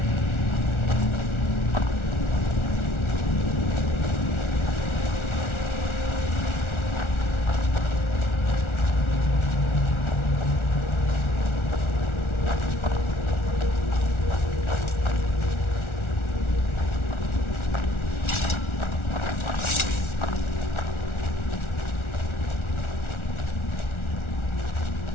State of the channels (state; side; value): late; right; 1.4 ms